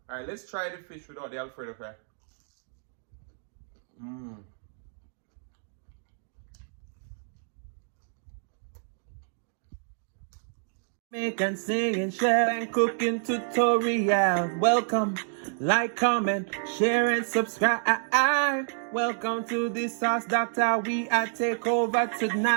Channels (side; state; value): left; silent; digital silence